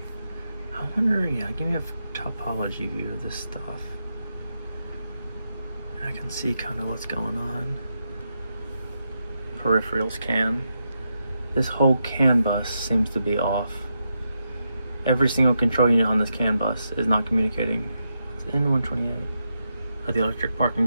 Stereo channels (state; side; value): inverted; both; correlation -0.85